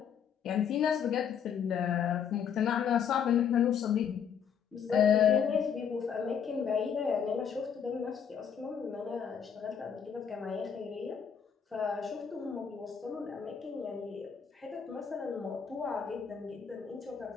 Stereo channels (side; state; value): right; quieter; 7.6 dB